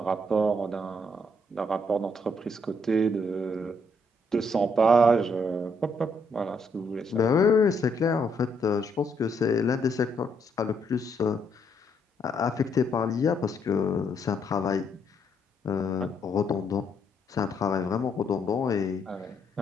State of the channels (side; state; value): both; normal; correlation 0.73